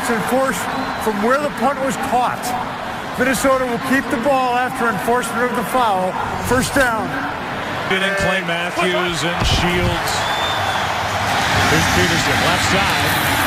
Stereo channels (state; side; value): identical; both; correlation 1.00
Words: enforced from where the punt was caught. Minnesota will keep the ball after enforcement of the foul. First down. In Clay Matthews and Shields. Here's Peterson, left side.